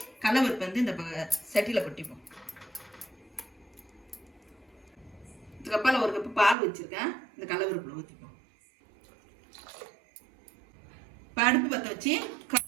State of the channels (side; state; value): left; drops out; at 6.6 s